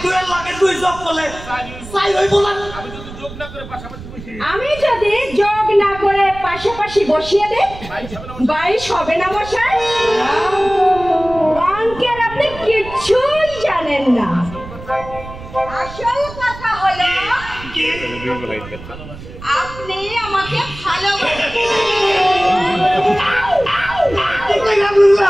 আমি যদি যোগ না করে পাশাপাশি বসিয়ে দেই 22 হবে না মশাই? অঙ্কের আপনি কিছুই জানেন না। আসল কথা হলো আপনি আমাকে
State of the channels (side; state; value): right; noise; rumble, 14 dB below the sound